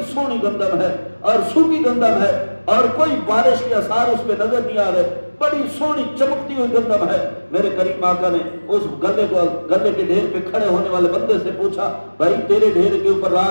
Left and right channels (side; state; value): both; inverted; correlation -1.00